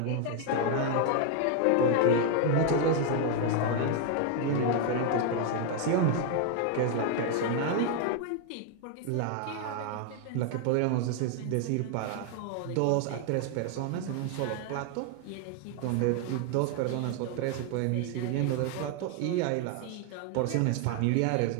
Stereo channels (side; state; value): both; different; correlation 0.00